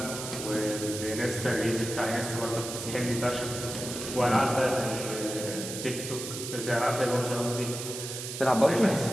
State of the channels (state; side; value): noise; right; hiss, 7 dB below the sound